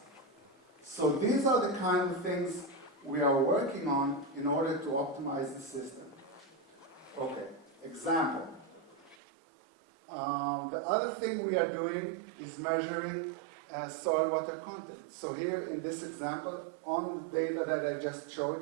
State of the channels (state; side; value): drops out; left; at 9.2 s